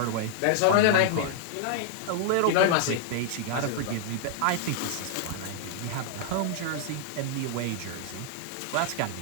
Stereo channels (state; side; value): different; both; correlation -0.01